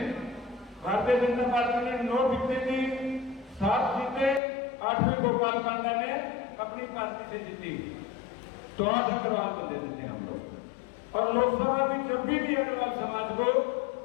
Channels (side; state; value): right; drops out; at 4.4 s